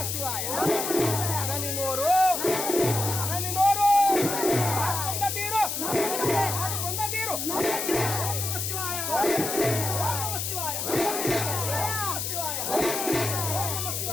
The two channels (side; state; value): left; noise; hiss, 2 dB below the sound